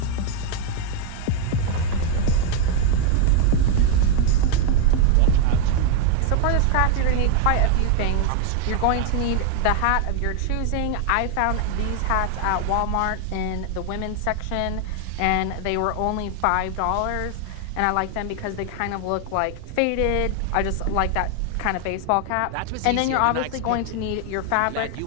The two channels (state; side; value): different; both; correlation 0.00